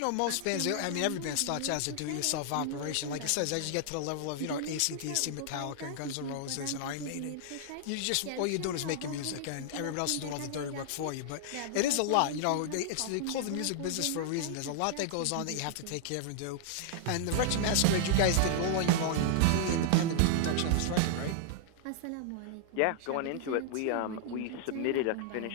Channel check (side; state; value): both; different; correlation -0.01